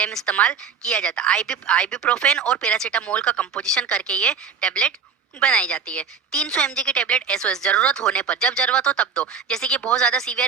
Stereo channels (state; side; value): quieter; left; 6.2 dB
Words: इस्तेमाल किया जाता है। आइबुप्रोफेन और पैरासीटामोल का कंपोजिशन करके ये टेबलेट बनाई जाती है। 300 mg की टेबलेट एसओएस जरूरत होने पर, जब जरूरत हो तब दो। जैसे कि बहुत ज्यादा सीवियर